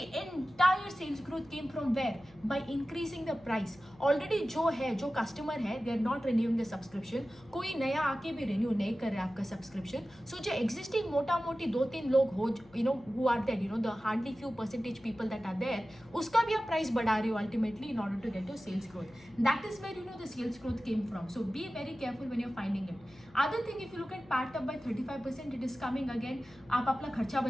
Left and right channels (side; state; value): left; noise; hum, 26 dB below the sound